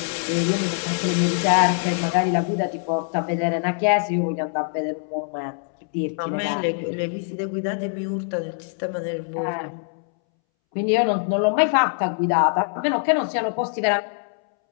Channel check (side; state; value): right; silent; 63 dB below the other